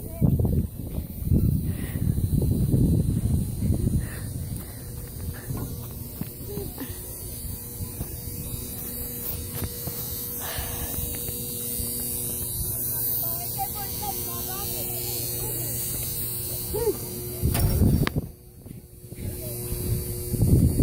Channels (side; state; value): both; identical; correlation 1.00